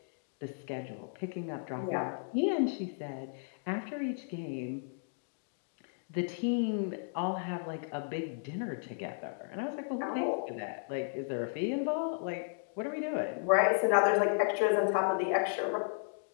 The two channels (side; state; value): right; silent; digital silence